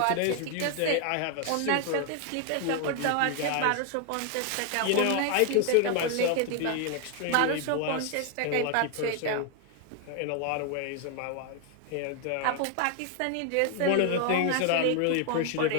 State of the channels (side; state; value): both; different; correlation 0.00